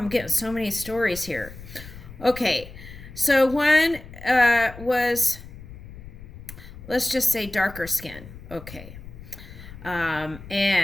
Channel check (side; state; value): left; noise; rumble, 15 dB below the sound